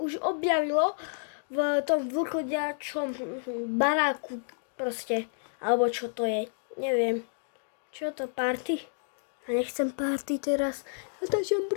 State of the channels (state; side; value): silent; right; digital silence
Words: objavilo v tom vlkodiačom baráku proste, alebo čo to je, neviem. Čo to, party? A nechcem party teraz, natáčam